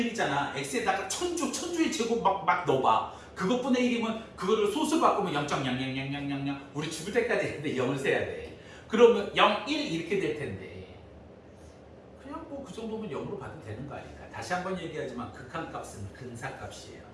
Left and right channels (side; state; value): both; identical; correlation 1.00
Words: 1이잖아. x에다가 천주의 제곱 막 넣어봐. 그것분의 1이면 그거를 소수 바꾸면 0.000000 우리 죽을 때까지 했는데 0을 세야 돼. 그러면 0, 1 이렇게 될 텐데 그냥 뭐 그 정도면 0으로 봐도 되는 거 아닐까. 다시 한번 얘기하지만 극한값은 근사값이에요.